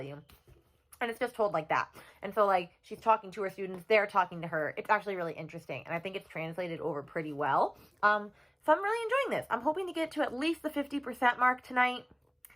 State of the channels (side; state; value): both; identical; correlation 1.00